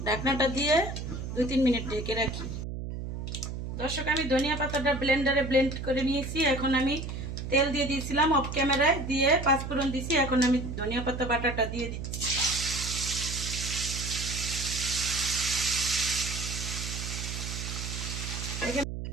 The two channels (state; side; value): noise; right; hum, 6 dB below the sound